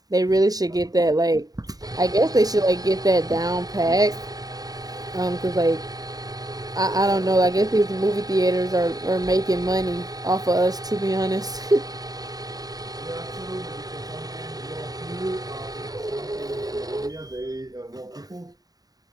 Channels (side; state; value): left; late; 0.18 ms